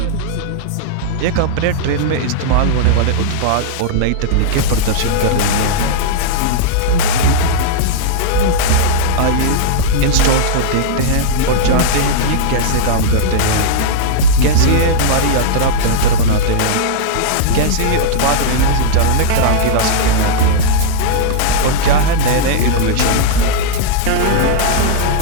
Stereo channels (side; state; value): both; different; correlation -0.02